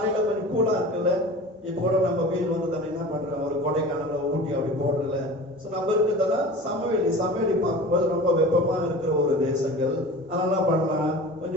கொஞ்சம் கூலா இருக்குல்ல. இப்போ கூட நம்ம வெயில் வந்ததானே என்ன பண்றோம், ஒரு கொடைக்கானல ஊட்டி அப்படி போடுறல. சோ நம்ம இருக்கிறதெல்லாம் சமவெளி பார்க்கும்போது ரொம்ப வெப்பமா இருக்கிற ஒரு தேசங்கள். அதனால பண்ணலாம்,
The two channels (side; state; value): both; normal; correlation 0.37